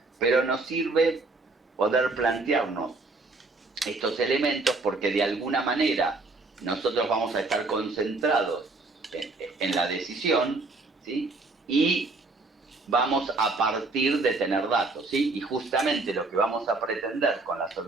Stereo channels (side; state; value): left; quieter; 3.5 dB